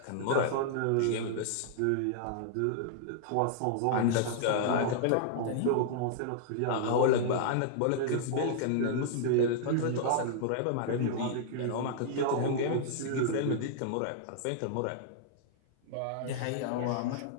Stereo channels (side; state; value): both; different; correlation -0.01